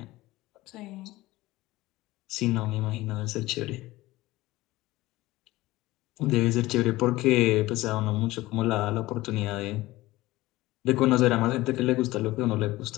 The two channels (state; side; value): quieter; right; 18.4 dB